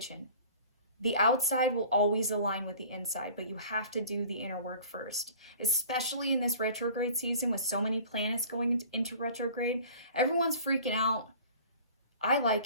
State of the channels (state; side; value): inverted; both; correlation -0.45